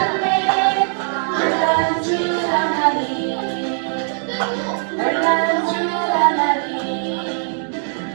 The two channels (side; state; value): left; silent; digital silence